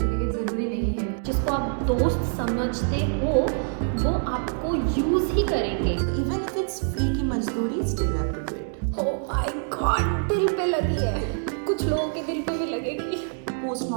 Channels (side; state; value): left; silent; 61 dB below the other